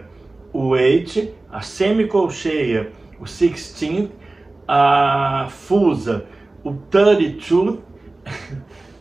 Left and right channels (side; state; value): left; quieter; 3.1 dB